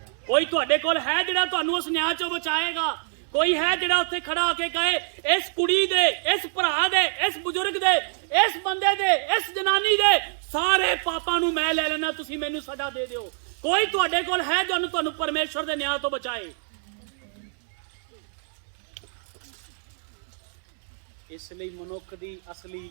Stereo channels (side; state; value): left; silent; digital silence